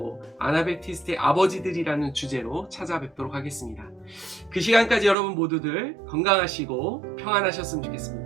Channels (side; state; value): left; drops out; at 5.2 s